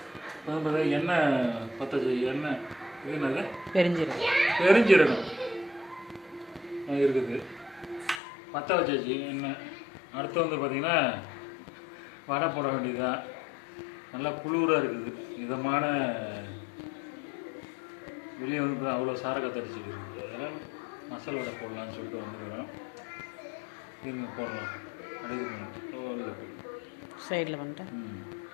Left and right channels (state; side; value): drops out; right; at 8.2 s